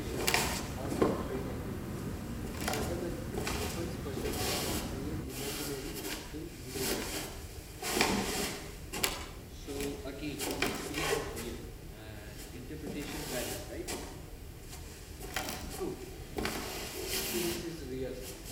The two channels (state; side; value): identical; both; correlation 1.00